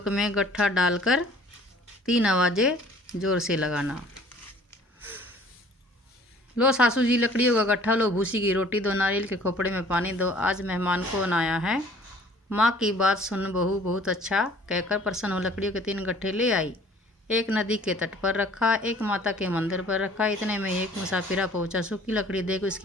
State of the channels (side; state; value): both; normal; correlation 0.53